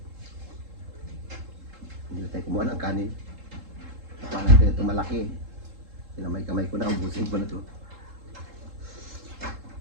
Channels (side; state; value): left; late; 3.7 ms